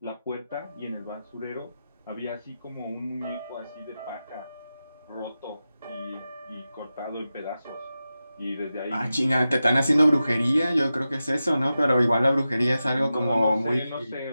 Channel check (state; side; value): inverted; both; correlation -0.93